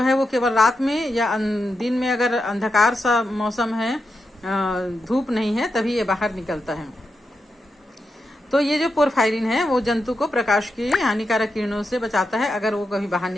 है वो केवल रात में या दिन में, अगर अंधकार सा मौसम है धूप नहीं है तभी ये बाहर निकलता है। तो ये जो पोरफायरिन है वो जंतु को प्रकाश की हानिकारक किरणों से बचाता है अगर वो कभी बाहर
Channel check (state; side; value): normal; both; correlation 0.87